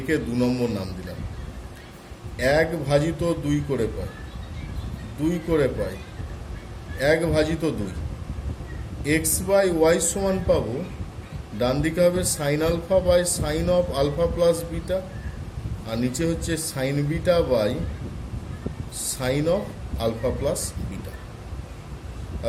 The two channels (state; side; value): identical; both; correlation 1.00